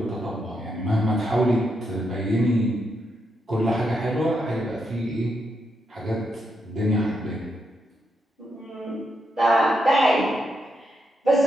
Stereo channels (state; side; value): normal; both; correlation 0.81